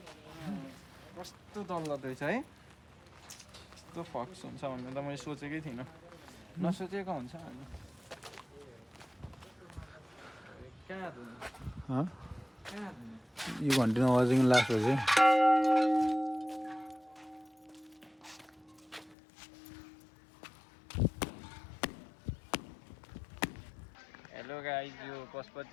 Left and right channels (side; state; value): right; drops out; at 19.2 s